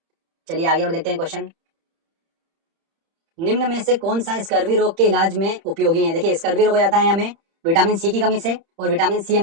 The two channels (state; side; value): late; left; 30 ms